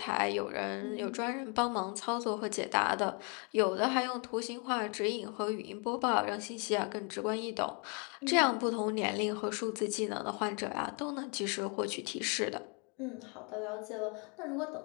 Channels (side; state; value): right; quieter; 34.4 dB